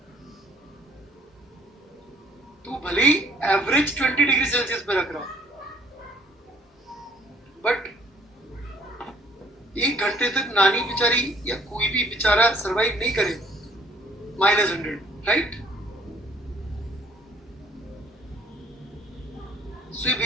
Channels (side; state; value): both; normal; correlation 0.59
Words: तू भले ही एवरेज 20 डिग्री सेल्सियस पे रख रहा, बट 1 घंटे तक नानी बेचारी या कोई भी बेचारा सरवाइव नहीं करेगा -100, राइट? सो ये